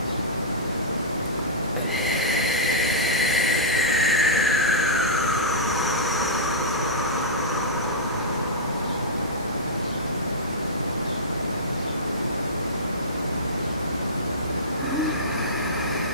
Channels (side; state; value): both; normal; correlation -0.13